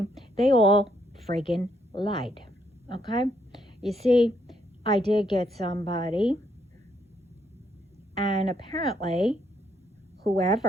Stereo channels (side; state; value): both; normal; correlation 0.73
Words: they all friggin' lied. Okay? You see, I did get somebody, and apparently,